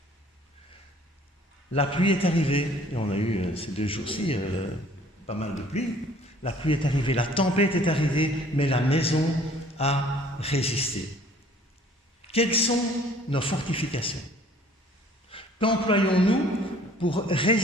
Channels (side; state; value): both; normal; correlation 0.55